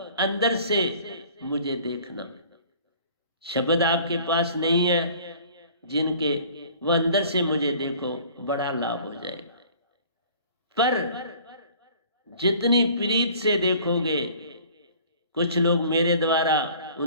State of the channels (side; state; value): both; inverted; correlation -0.50